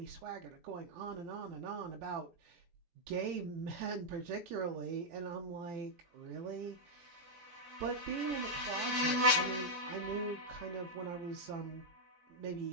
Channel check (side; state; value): left; late; 17 ms